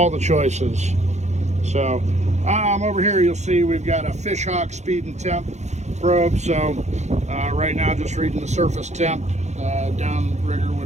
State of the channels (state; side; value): late; left; 0.33 ms